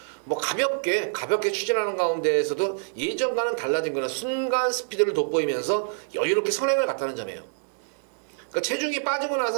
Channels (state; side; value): silent; left; digital silence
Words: 뭐 가볍게 추진하는 가운데에서도 예전과는 달라진 거는 순간 스피드를 돋보이면서 여유롭게 선행을 갔다는 점이에요. 그러니까 체중이 빠지고